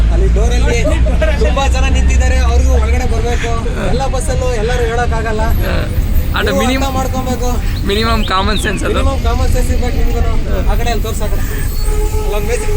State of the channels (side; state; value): both; identical; correlation 1.00